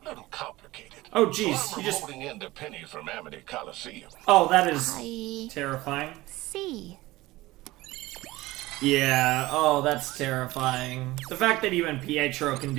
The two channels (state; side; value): quieter; left; 18.8 dB